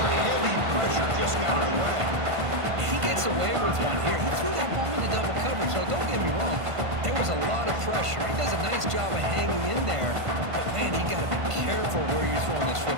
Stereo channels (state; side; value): late; left; 1.5 ms